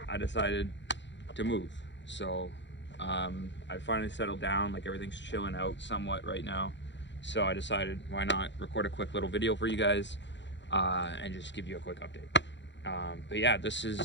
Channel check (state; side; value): late; right; 0.52 ms